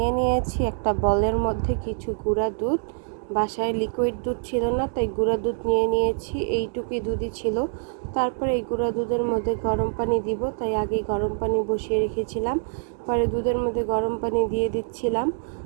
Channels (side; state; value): left; silent; digital silence